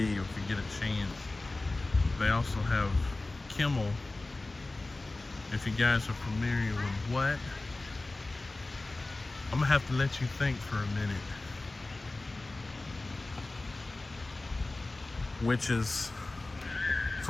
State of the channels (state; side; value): quieter; right; 3.1 dB